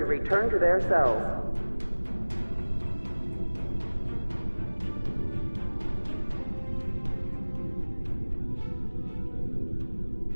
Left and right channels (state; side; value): inverted; both; correlation -1.00